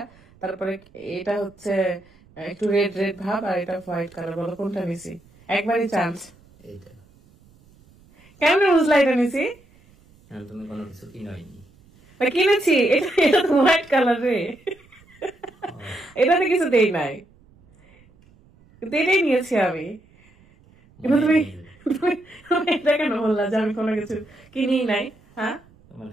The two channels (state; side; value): noise; right; rumble, 29 dB below the sound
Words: তারপরে এটা হচ্ছে একটু রেড রেড ভাব, আর এটা হোয়াইট কালার। বলো কোনটা নিছি? একবারই চান্স। এইটা কেমন বুঝলা এটা নিছি? তুমি কোনো কিছু কিনোইনি। কিনেছি, এটা তো হোয়াইট কালার রে, এটাতে কিছু দেই নাই, কিন্তু এটাই নিয়েছি আমি। কিন্তু তুমি এটা কেন বললা যে আমি কোনো কিছু কিনি নাই? হ্যাঁ, তোমার